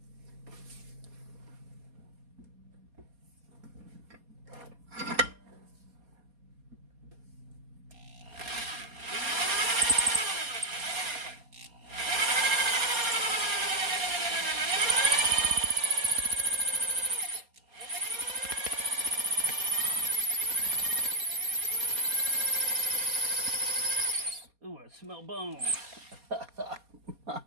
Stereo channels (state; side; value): late; left; 4.2 ms